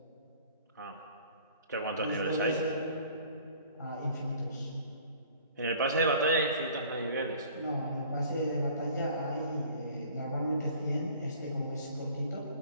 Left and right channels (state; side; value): inverted; both; correlation -0.51